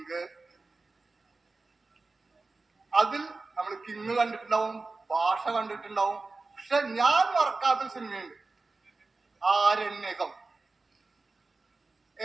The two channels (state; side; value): quieter; left; 3.6 dB